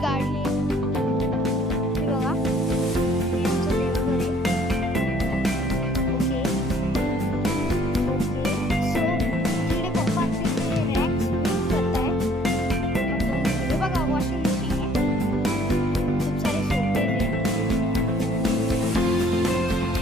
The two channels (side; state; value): both; normal; correlation 0.60